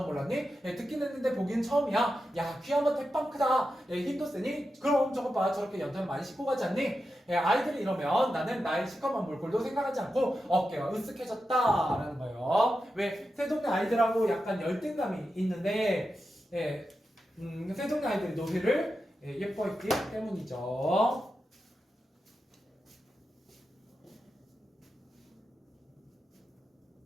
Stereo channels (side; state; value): both; normal; correlation 0.89